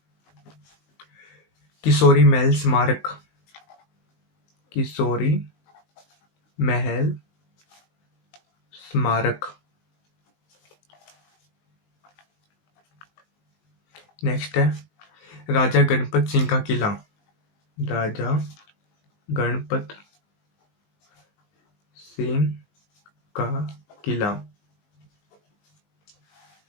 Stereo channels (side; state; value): right; late; 20 ms